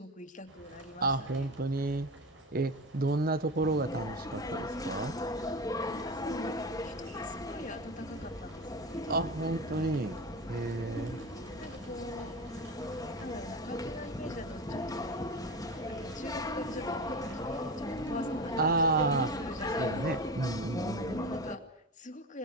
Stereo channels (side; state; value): both; normal; correlation 0.26